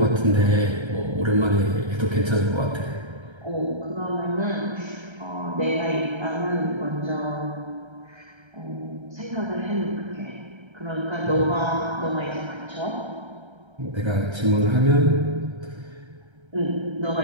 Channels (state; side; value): late; left; 1.3 ms